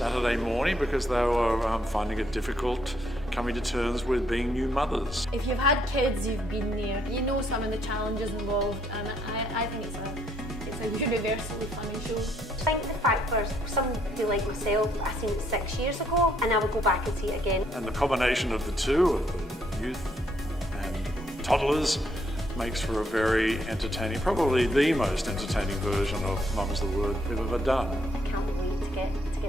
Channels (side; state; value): both; normal; correlation 0.71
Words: morning because they were finding it difficult coming to terms with being new mothers. If you've had kids, you've been there, you know some of the challenges involved, and I think it's a universally funny show. I think the fact for somebody like myself, I seen it 6 years ago and I would go back and see it again. And the combination of the two, of the youth and toddlers, makes for a very entertaining, probably the most entertaining version of Mum's the Word we've ever done. I can't wait to get